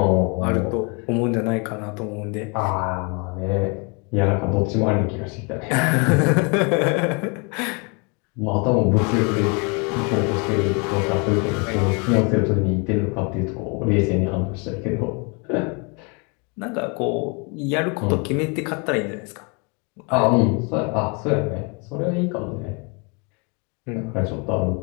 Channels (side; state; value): right; quieter; 32.9 dB